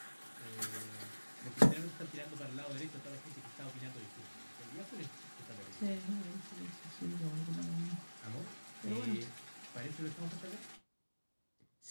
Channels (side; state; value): both; inverted; correlation -1.00